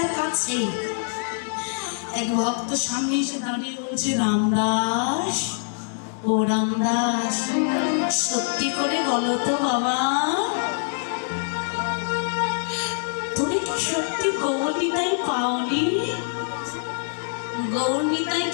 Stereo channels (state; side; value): silent; right; digital silence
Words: আর কাছে। এক ভক্ত সামনে এসে দাঁড়িয়ে বলছে, রামদাস, ও রামদাস, সত্যি করে বলো তো বাবা, তুমি কি সত্যি গৌরনিতাই পাওনি? গৌরনিতাই